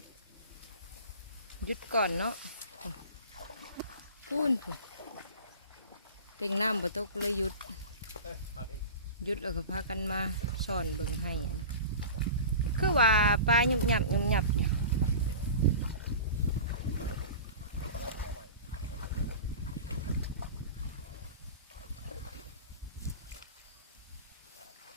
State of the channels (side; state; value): both; inverted; correlation -0.35